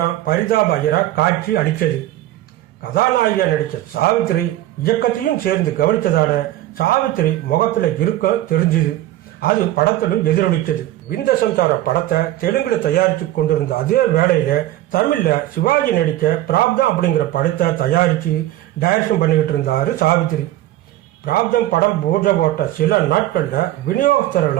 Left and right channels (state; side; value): quieter; left; 14.8 dB